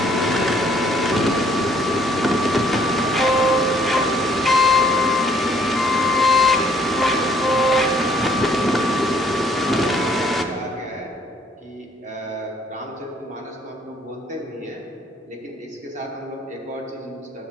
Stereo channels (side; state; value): both; normal; correlation 0.63